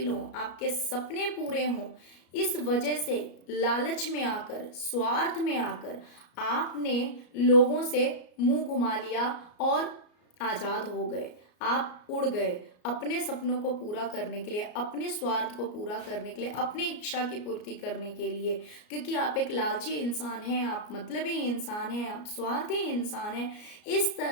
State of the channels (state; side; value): late; right; 33 ms